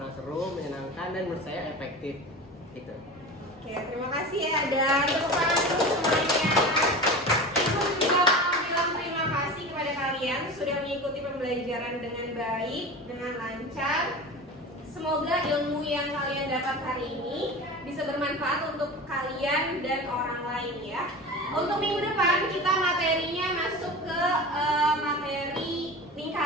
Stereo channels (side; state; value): both; normal; correlation 0.31